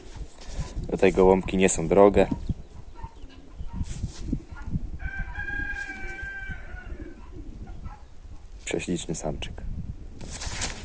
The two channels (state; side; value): identical; both; correlation 1.00